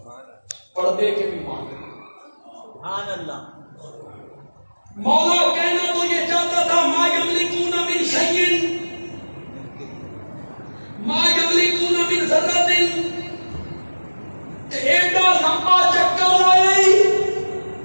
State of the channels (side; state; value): both; inverted; correlation -1.00